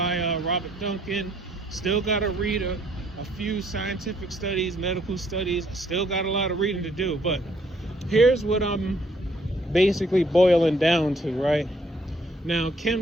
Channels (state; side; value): normal; both; correlation 0.66